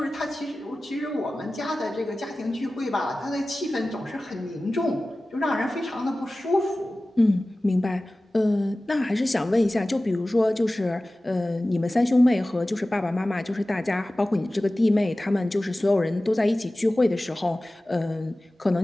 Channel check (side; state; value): both; normal; correlation 0.97